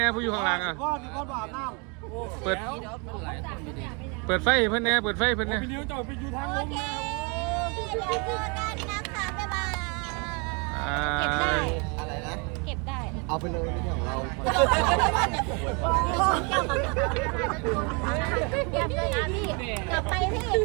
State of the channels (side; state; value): left; quieter; 32.8 dB